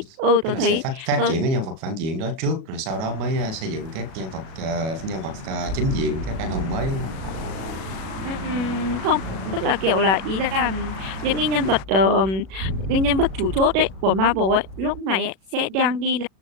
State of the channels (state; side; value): late; left; 37 ms